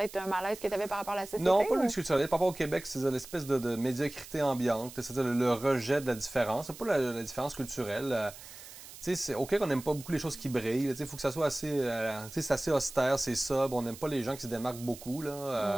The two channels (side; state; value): right; noise; hiss, 16 dB below the sound